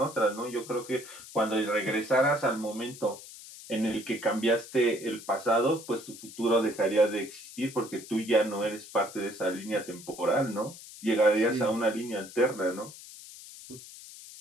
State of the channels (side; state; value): left; noise; hiss, 16 dB below the sound